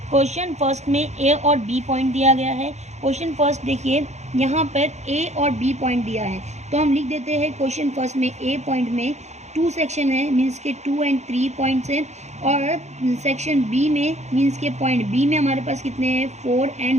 क्वेश्चन फर्स्ट में ए और बी पॉइंट दिया गया है। क्वेश्चन फर्स्ट देखिए यहाँ पर ए और बी पॉइंट दिया है, तो हम लिख देते हैं क्वेश्चन फर्स्ट में ए पॉइंट में 2 सेक्शन है, मीन्स के 2 और 3 पॉइंट्स हैं। और सेक्शन बी में मीन्स के पॉइंट बी में हमारे पास कितने हैं, 4 और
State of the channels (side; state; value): left; late; 0.33 ms